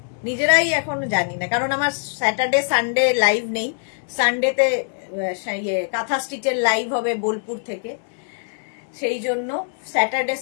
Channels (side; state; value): right; silent; digital silence